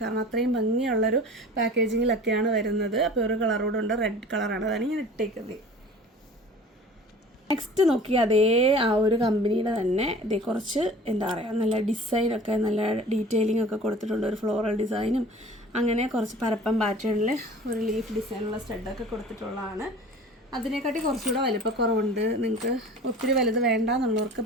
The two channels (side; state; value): both; normal; correlation 0.43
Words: കാരണം അത്രയും ഭംഗിയുള്ളൊരു പാക്കേജിങ്ങിലൊക്കെയാണ് വരുന്നത്. അപ്പോൾ ഒരു കളറോടുണ്ട്, റെഡ് കളറാണ്, അതാണ് ഞാൻ ഇട്ടേക്കുന്നത്. നെക്സ്റ്റ് നോക്കി അതേ ആ ഒരു കമ്പനിയുടെ തന്നെ ഇതേ കുറച്ച് എന്താ പറയുക നല്ല ഡിസൈനൊക്കെ നല്ല ഡീറ്റെയിലിംഗ് ഒക്കെ കൊടുത്തിട്ടുണ്ട്. ഒരു ഫ്ലോറൽ ഡിസൈനും അങ്ങനെ കുറച്ച് പരപ്പം പാറ്റേണിൽ ഒരു ലീഫ് ഡിസൈനുള്ള സ്റ്റഡൊക്കെ കൊടുത്തിട്ടുള്ളതാണ്. അതിനെക്കാട്ടി കുറച്ചുകൂടെ വലിപ്പക്കുറവുണ്ട്. നിങ്ങൾക്ക് ഒത്തിരി വലുത് വേണ്ട എന്നുള്ളവർക്ക്